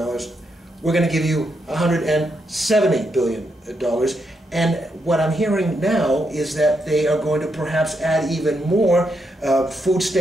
going to give you $170 billion. And what I'm hearing now is that they are going to perhaps add even more food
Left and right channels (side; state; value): both; normal; correlation 0.81